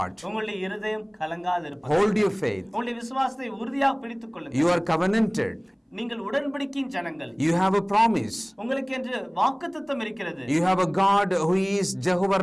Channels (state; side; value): identical; both; correlation 1.00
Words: உங்களுடைய இருதயம் கலங்காது இருப்பதாக. Hold your faith. உங்களுடைய விசுவாசத்தை உறுதியாக பிடித்துக் கொள்ளுங்கள். You are covenanted. நீங்கள் உடன்படிக்கையின் ஜனங்கள். You have a promise. உங்களுக்கு என்று வாக்குத்தத்தம் இருக்கிறது. You have a God who is Jehovah